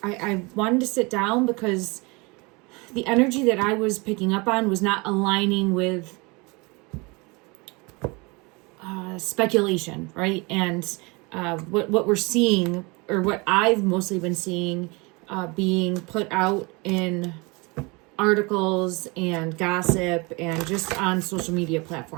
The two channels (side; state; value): left; quieter; 27.3 dB